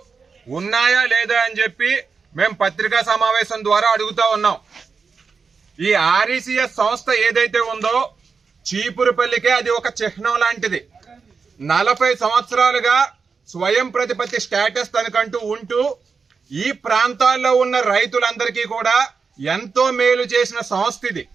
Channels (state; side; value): quieter; left; 5.2 dB